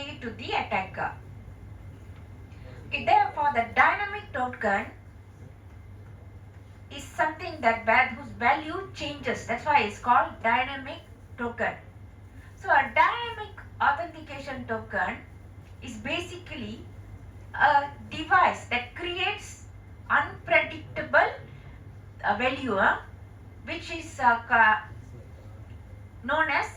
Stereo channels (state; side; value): identical; both; correlation 1.00